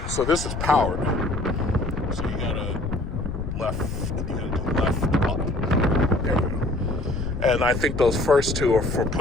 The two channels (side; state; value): left; noise; rumble, 5 dB below the sound